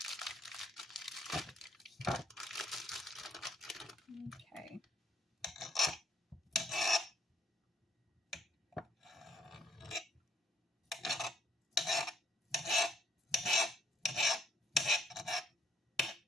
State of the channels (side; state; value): both; normal; correlation 0.68